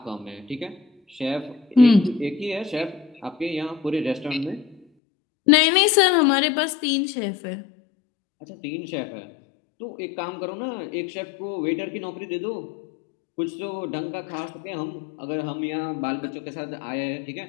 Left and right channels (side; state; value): right; drops out; at 4.8 s